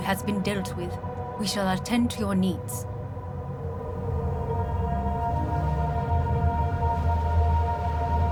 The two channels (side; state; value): both; identical; correlation 1.00